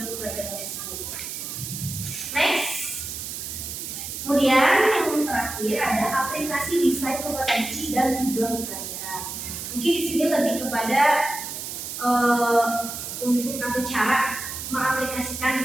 pembelajaran tersebut. Next. Kemudian yang terakhir ada aplikasi desain kompetensi dan tujuan pembelajaran. Mungkin di sini lebih kepada untuk atau cara mengaplikasikan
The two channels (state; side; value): noise; right; hiss, 7 dB below the sound